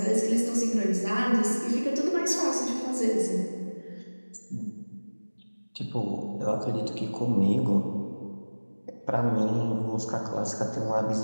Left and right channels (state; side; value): inverted; both; correlation -1.00